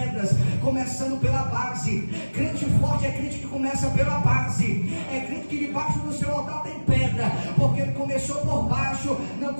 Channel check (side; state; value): both; inverted; correlation -1.00